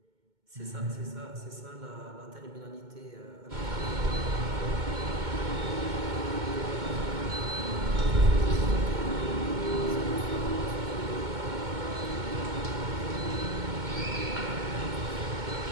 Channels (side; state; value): left; late; 2.2 ms